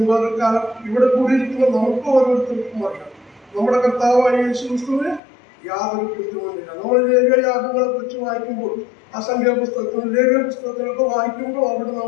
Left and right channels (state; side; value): drops out; right; at 5.2 s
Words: പകൽക്കാലം ഇവിടെ കൂടിയിരിക്കുന്ന നമുക്ക് ഓരോരുത്തർക്കും അറിയാം നമ്മുടെ കർത്താവായ യേശുക്രിസ്തുവിന് യാതൊരു കുറ്റവുമില്ല. നമ്മൾ ലേവ്യയാഗങ്ങളെ കുറിച്ച് വായിക്കുമ്പോൾ അസംഖ്യ പുസ്തകത്തിലും ലേവ്യ പുസ്തകത്തിലൊക്കെ വായിക്കുമ്പോൾ അവിടെ